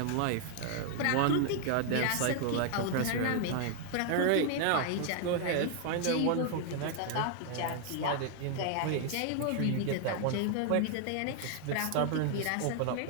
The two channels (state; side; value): different; both; correlation 0.00